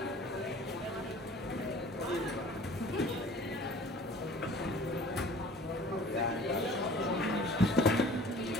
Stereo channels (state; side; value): normal; both; correlation 0.48